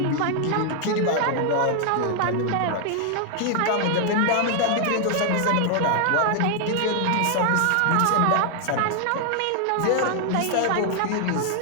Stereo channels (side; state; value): both; different; correlation 0.00